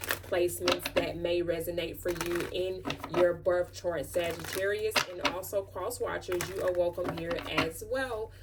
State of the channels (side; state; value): both; identical; correlation 1.00